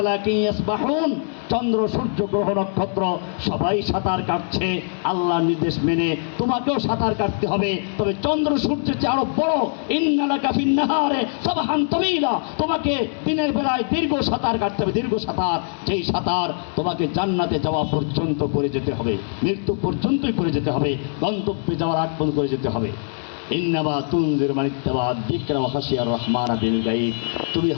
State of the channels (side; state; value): right; silent; digital silence